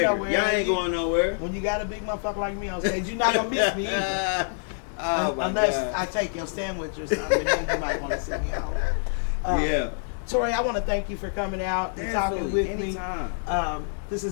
nowhere. Y'all ain't going nowhere. When you got a big motherfucker like me on stage, you're not gonna miss me either. Unless I take your sandwich or something, then you might want to sit me out. Yeah. Tori, I want to thank you for coming out and talking with anytime. me. This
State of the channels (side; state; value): right; silent; digital silence